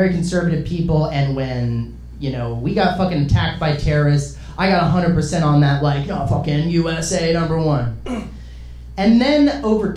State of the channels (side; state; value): both; identical; correlation 1.00